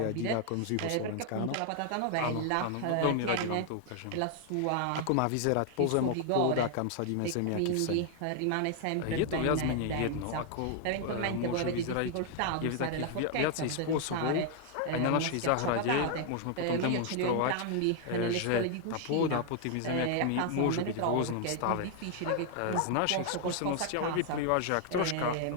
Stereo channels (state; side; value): different; both; correlation 0.00